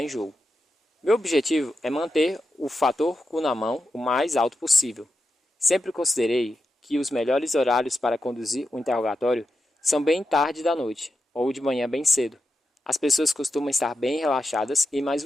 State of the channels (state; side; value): normal; both; correlation 0.89